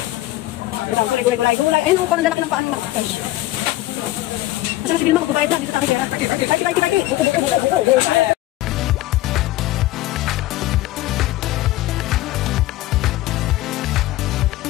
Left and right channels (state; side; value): quieter; right; 16.4 dB